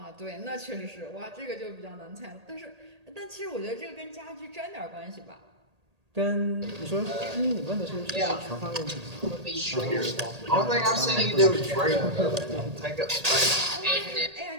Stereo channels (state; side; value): late; left; 1.8 ms